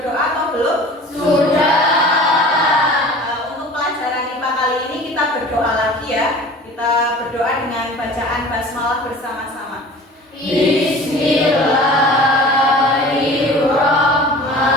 atau belum? Sudah. Untuk pelajaran IPA kali ini kita berdoa lagi ya. Kita berdoa dengan bacaan basmalah bersama-sama. Bismillahirrahmanirrahim.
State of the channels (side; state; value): both; normal; correlation 0.42